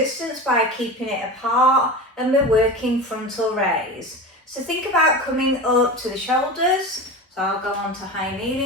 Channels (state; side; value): normal; both; correlation 0.29